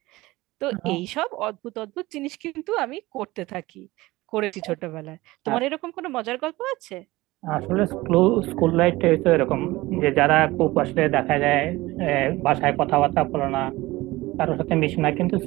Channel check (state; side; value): quieter; left; 19.5 dB